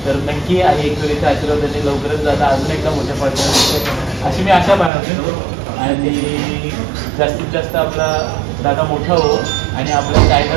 तर नक्की आई एकविरीचा आशीर्वादाने लवकरच दादा अजून एकदा मोठ्या पाठवणार अशी मी आशा बाळगतो. आणि जास्तीत जास्त आपला दादा मोठा हो आणि आपलं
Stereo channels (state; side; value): drops out; left; at 4.9 s